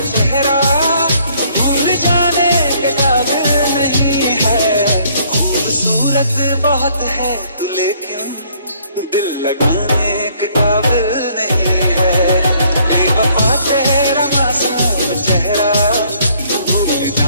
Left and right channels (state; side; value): inverted; both; correlation -0.63